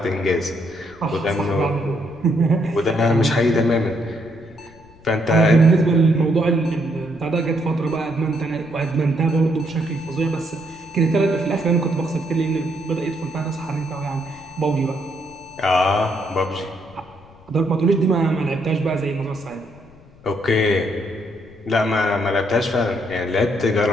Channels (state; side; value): noise; left; rumble, 25 dB below the sound